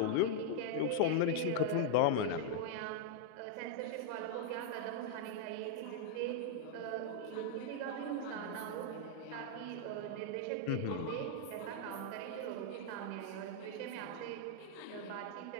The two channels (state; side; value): different; both; correlation -0.01